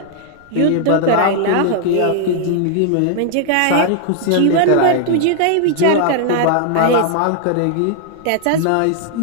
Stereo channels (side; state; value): both; different; correlation 0.00